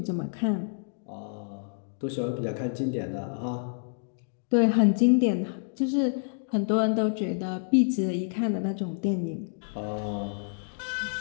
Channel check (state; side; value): silent; right; digital silence